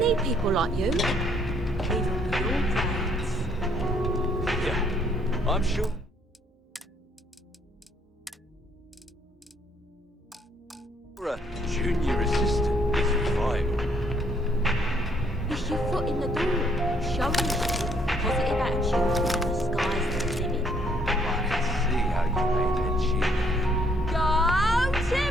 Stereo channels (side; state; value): both; normal; correlation 0.67